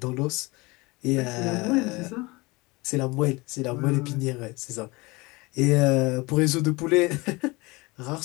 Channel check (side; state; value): right; quieter; 23.9 dB